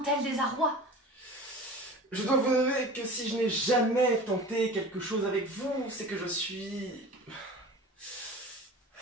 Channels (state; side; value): normal; both; correlation 0.37